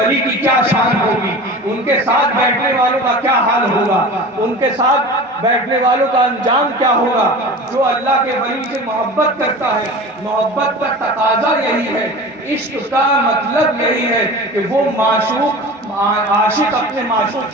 کی کیا شان ہوگی، ان کے ساتھ بیٹھنے والوں کا کیا حال ہوگا، ان کے ساتھ بیٹھنے والوں کا انجام کیا ہوگا۔ جو اللہ کے ولی سے محبت کرتا ہے، محبت کا تقاضا یہی ہے، عشق کا مطلب یہی ہے کہ وہ عاشق اپنے معشوق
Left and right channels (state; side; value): normal; both; correlation 0.35